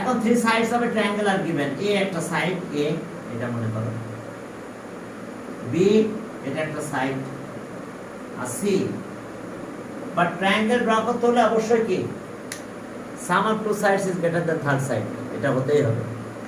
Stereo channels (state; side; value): identical; both; correlation 1.00